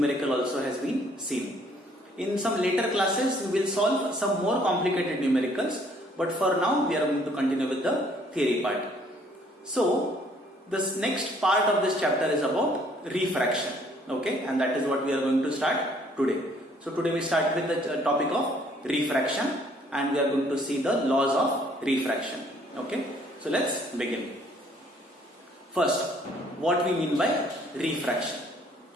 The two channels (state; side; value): normal; both; correlation 0.61